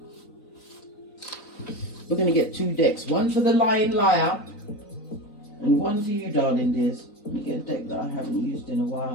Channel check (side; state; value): right; late; 3.9 ms